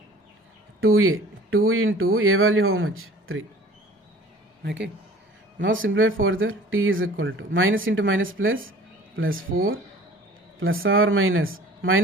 2a. 2 into a value how much? 3. Okay. Now simplify further. T is equal to minus into minus plus 4 plus or minus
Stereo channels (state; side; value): normal; both; correlation 0.47